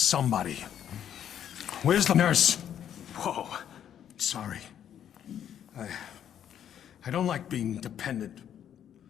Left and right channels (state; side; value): quieter; right; 9.7 dB